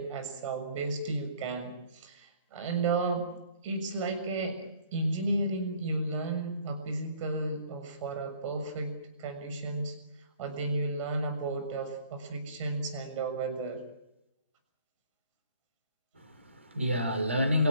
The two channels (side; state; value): both; inverted; correlation -0.56